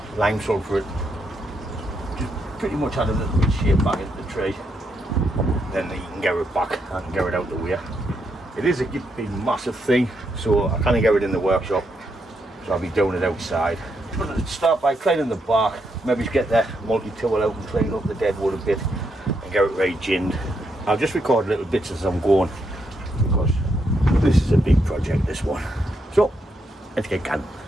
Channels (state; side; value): normal; both; correlation 0.79